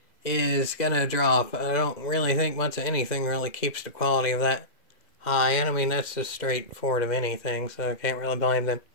is gonna drop. I don't really think much of anything really keeps the quality of that high. And I mean, that's just straightforward of anything, so I can't really blame them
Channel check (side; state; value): right; late; 2.1 ms